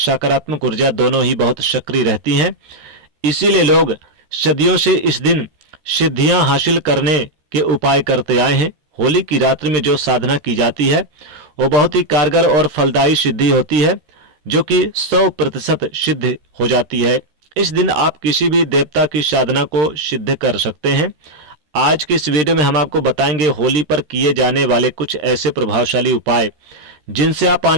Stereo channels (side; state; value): left; late; 13 ms